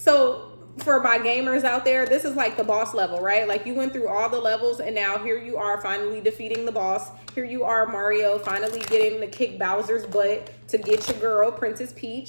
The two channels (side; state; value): both; inverted; correlation -1.00